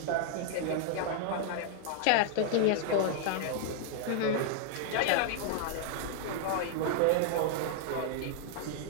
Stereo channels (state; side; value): different; both; correlation 0.00